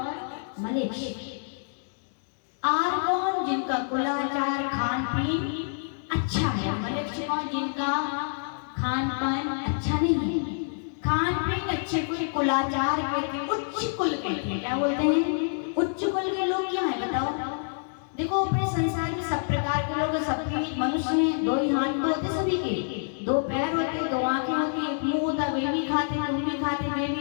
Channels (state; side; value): silent; right; digital silence